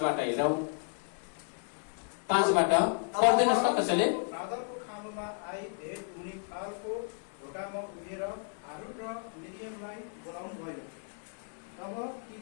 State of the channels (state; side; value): silent; right; 56 dB below the other